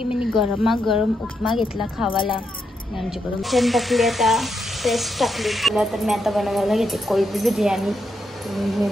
मी गरम उपमा घेतला खावाला. आमच्याकडून चिकन टाकली, आता पेस्ट टाकली तिला. तर मी आता बनवायला घेते कोळंबी बिर्याणी. हे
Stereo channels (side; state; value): both; normal; correlation 0.81